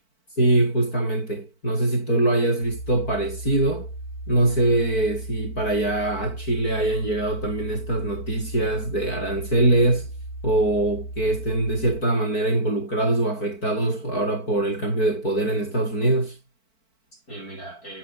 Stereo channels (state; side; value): late; right; 4.5 ms